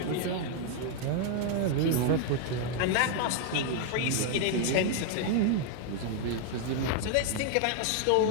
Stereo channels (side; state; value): both; different; correlation 0.00